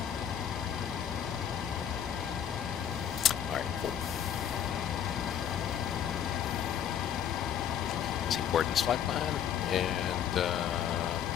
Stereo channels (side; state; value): right; quieter; 9.2 dB